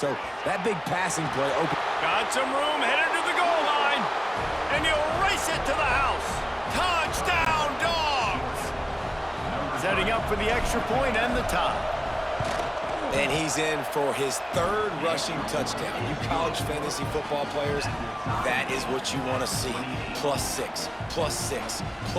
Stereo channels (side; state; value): both; identical; correlation 1.00